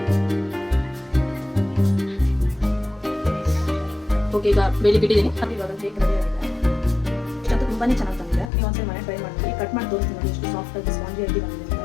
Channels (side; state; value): right; drops out; at 8.5 s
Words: ಓಕೆ, ಈಗ ಬೇಲಿಗೆ ಇಟ್ಟಿದ್ದೀನಿ. ಅದು ಇವಾಗ ಕೇಕ್ ರೆಡಿ ಆಗಿದೆ. ಇಷ್ಟಂತೂ ತುಂಬಾ ಚೆನ್ನಾಗಿ ಬಂದಿದೆ. ನೀವು ಒಂದ್ಸಲ ಮನೆ ಟ್ರೈ ಮಾಡಿ. ಕಟ್ ಮಾಡಿ ತೋರಿಸ್ತೀನಿ ನೋಡಿ ಎಷ್ಟು ಸಾಫ್ಟ್ ಆಗಿ ಸ್ಪಾಂಜಿ ಆಗಿ ಬಂದಿದೆ ಅಂತ.